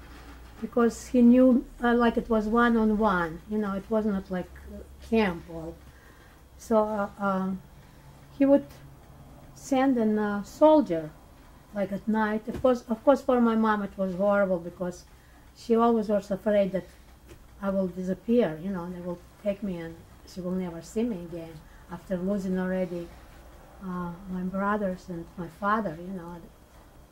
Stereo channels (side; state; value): both; identical; correlation 1.00